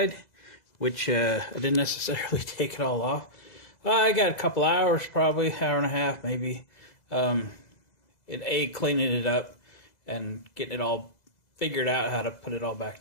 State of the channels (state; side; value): late; right; 2.0 ms